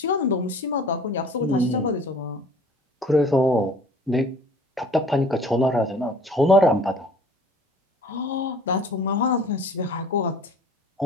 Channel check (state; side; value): normal; both; correlation 0.49